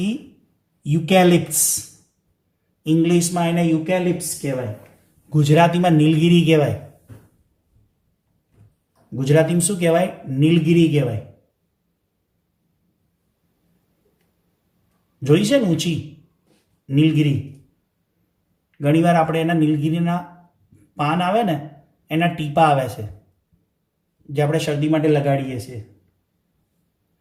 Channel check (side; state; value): both; identical; correlation 1.00